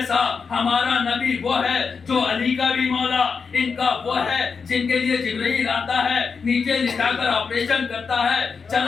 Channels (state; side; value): quieter; right; 5.5 dB